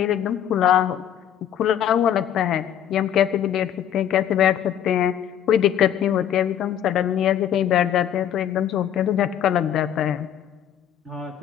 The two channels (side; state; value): right; quieter; 10.0 dB